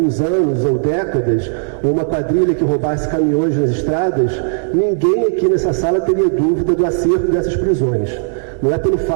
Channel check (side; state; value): left; silent; digital silence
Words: anos ou décadas, ou uma quadrilha que roubasse caminhões nas estradas, ninguém aqui nessa sala teria dúvida do acerto dessas prisões. Não é pelo